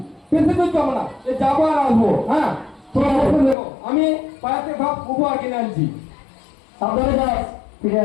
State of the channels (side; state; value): right; drops out; at 3.6 s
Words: বেশি দূর যাবো না, যাবো আর আসবো। হ্যাঁ তোমরা বসে দেখো, আমি বাজার থেকে সব উপহার কিনে আনছি। সাবধানে যাস, ফিরে